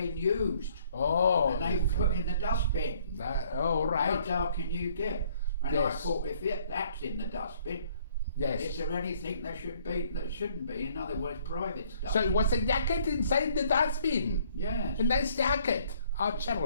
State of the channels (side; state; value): both; inverted; correlation -0.62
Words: used. Oh. And they were put in the dustbin. Right. How dark can you get? And yes. I thought, if that's in the dustbin, yes. is there anything that shouldn't be? In other words, private stuff. So it was a jacket inside the dustbin? Yes. A nice jacket. Oh,